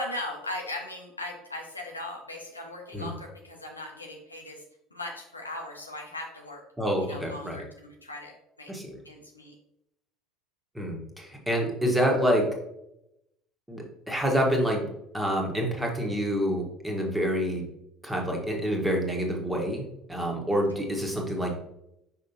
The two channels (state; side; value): normal; both; correlation 0.53